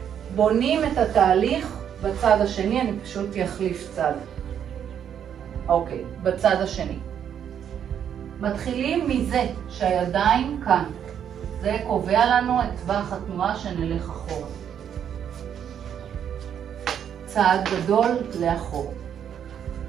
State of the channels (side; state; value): left; quieter; 8.9 dB